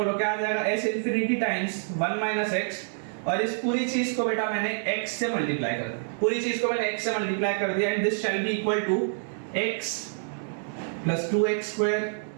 क्या आ जाएगा, s infinity times 1 minus x, और इस पूरी चीज को बेटा मैंने x से मल्टीप्लाई कर दिया, पूरी चीज को मैंने x से मल्टीप्लाई कर दिया, and this shall be equal to x plus 2x square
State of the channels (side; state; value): left; silent; 60 dB below the other